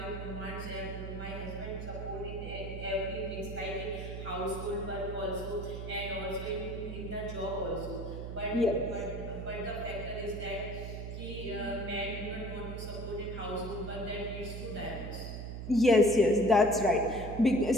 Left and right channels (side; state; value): right; noise; hum, 6 dB below the sound